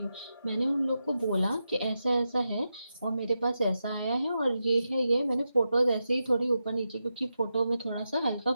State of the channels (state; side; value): inverted; both; correlation -0.89